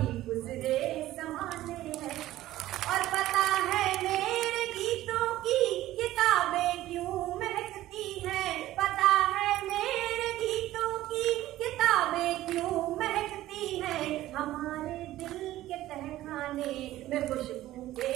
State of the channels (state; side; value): quieter; left; 15.0 dB